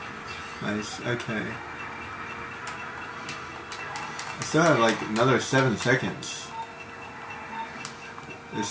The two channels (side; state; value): both; identical; correlation 1.00